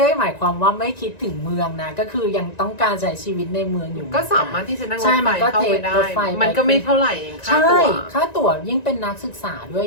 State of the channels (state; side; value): late; right; 1.9 ms